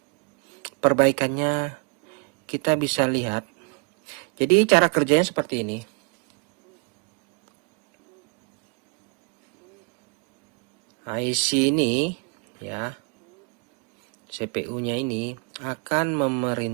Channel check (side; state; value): left; quieter; 32.9 dB